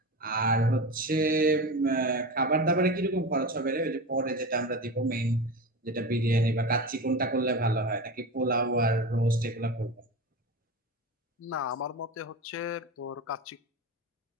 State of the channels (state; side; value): normal; both; correlation 0.25